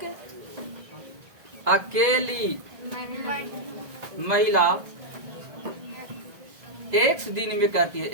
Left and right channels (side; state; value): left; late; 1.7 ms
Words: अकेली महिला एक दिन में करती है।